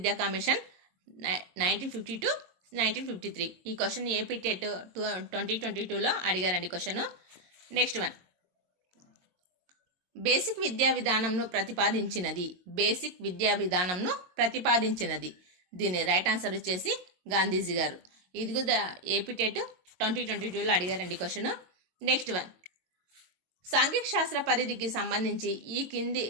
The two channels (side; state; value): left; late; 22 ms